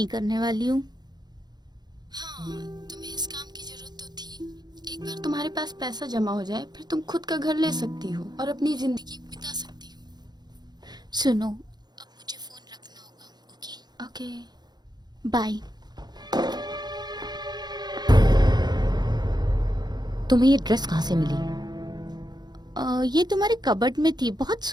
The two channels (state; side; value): late; left; 0.20 ms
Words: करने वाली हूँ। हाँ, तुम्हें इस काम की जरूरत तो थी। एक बार तुम्हारे पास पैसा जमा हो जाए, फिर तुम खुद का घर ले सकती हो और अपनी जिंदगी बिता सकती हो। सुनो, अब मुझे फोन रखना होगा। Okay okay. बाय। तुम्हें ये ड्रेस कहाँ से मिली? ये तुम्हारे कबर्ड में थी, बहुत